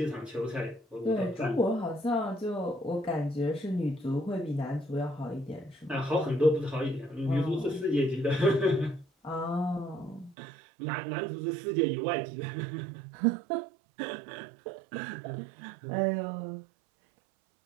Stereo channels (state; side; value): drops out; left; at 10.4 s